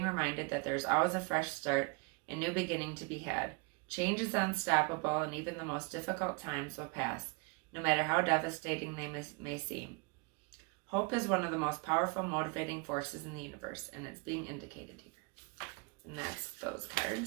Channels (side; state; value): left; quieter; 31.1 dB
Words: reminded that there is always a fresh start and new beginning to be had. Change is unstoppable, and even the most difficult times will pass, no matter how devastating they may seem. Hope is one of the most powerful motivating forces in the universe, and it's being indicated here. And that's those